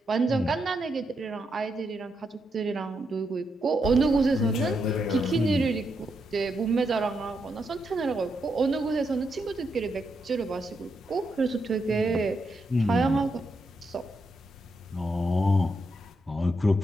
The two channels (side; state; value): both; normal; correlation 0.82